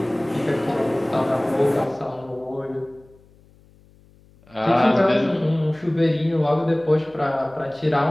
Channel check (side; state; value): left; noise; hum, 29 dB below the sound